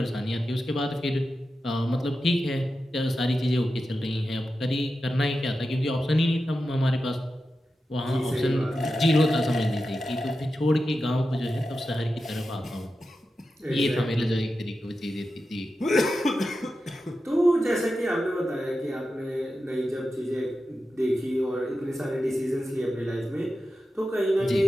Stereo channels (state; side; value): normal; both; correlation 0.91